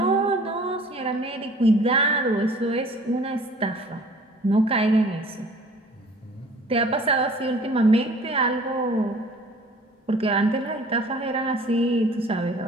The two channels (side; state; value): both; normal; correlation 0.50